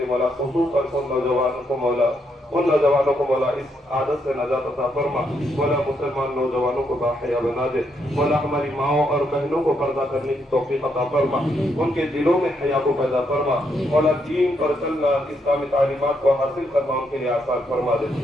مولا خصوصاً ان نوجوانوں کو مولا اس عادت سے نجات عطا فرما، مولا مسلمان نوجوانوں کو باحیا بنا دے، مولا ہماری ماؤں اور بہنوں کو پردہ کرنے کی توفیق عطا فرما، ان کے دلوں میں حیا کو پیدا فرما، مولا دین پر چلنا اسلامی تعلیمات کو حاصل کرنا ان کے لیے آسان فرما دے،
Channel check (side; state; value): both; normal; correlation 0.77